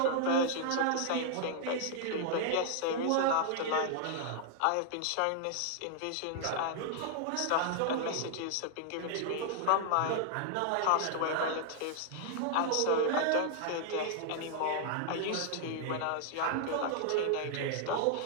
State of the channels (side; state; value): both; different; correlation -0.01